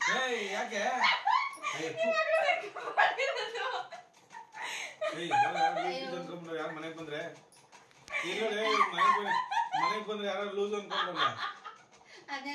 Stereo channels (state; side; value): identical; both; correlation 1.00